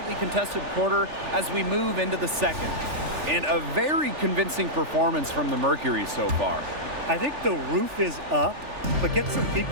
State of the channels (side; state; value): left; late; 3.4 ms